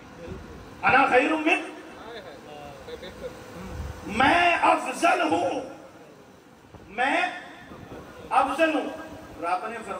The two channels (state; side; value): identical; both; correlation 1.00